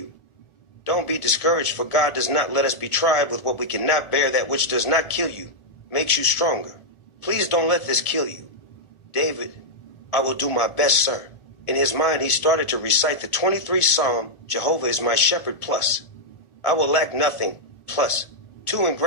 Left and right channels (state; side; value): late; right; 1.4 ms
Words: Don't be discouraged, for God does not let us be tried with what we cannot bear. That which does not kill you makes you stronger. Please don't let this kill you. David, I will do my best, sir. In his mind, he started to recite the 23rd Psalm, Jehovah is my shepherd, plus. I will lack nothing, plus. 2 in